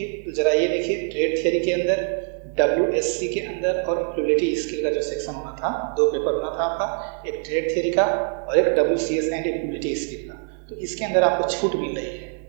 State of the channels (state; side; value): silent; left; 63 dB below the other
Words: तो ज़रा ये देखिए। ट्रेड थियरी के अंदर, WSC के अंदर और एम्प्लॉयबिलिटी स्किल का जो सेक्शन होना था, दो पेपर होना था आपका, एक ट्रेड थियरी का और एक WCS एंड एम्प्लॉयबिलिटी स्किल का। तो इसके अंदर आपको छूट मिल रही है